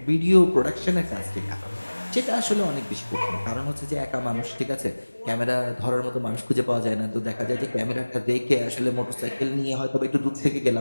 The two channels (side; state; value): both; inverted; correlation -1.00